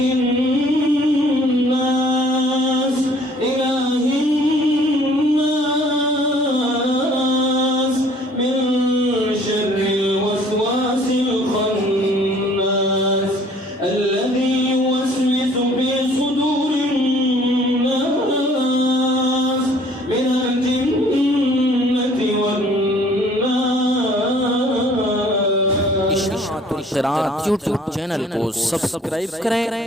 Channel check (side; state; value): both; normal; correlation 0.56